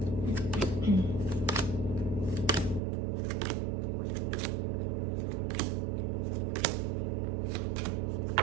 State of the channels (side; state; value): left; drops out; at 2.8 s